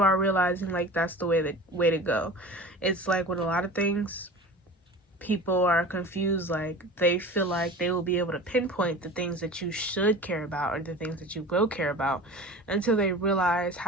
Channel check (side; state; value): both; normal; correlation 0.37